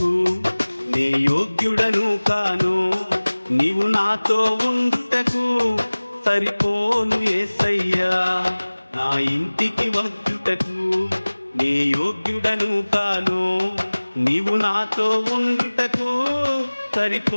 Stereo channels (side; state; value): both; inverted; correlation -1.00